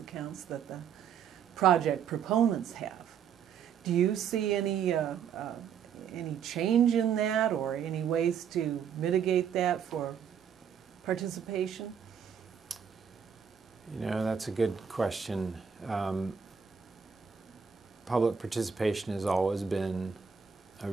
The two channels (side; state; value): left; quieter; 7.4 dB